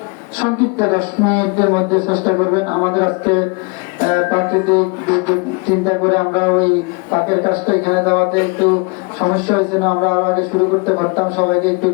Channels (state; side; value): quieter; right; 31.6 dB